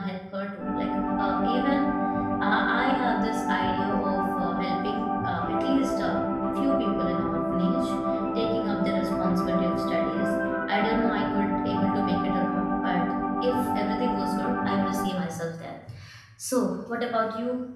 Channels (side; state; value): both; identical; correlation 1.00